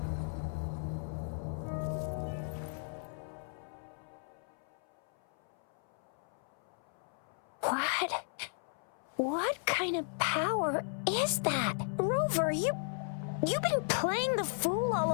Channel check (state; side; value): silent; right; 54 dB below the other